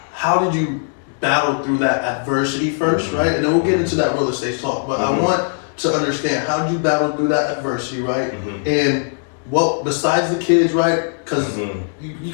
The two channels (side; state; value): right; silent; 66 dB below the other